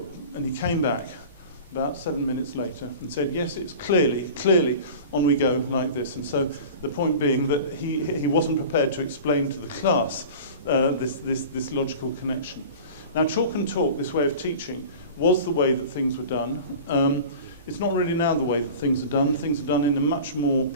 And he came back about 7 minutes later and said, yes, it's clearly, on we go like this. And so the point being that he wasn't prepared to explain to the class this logical connection. Now, chalk and talk, this way of teaching, was the way that things were done. It's not really now the way that things are done. Things are done in a much more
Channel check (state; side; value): inverted; both; correlation -0.37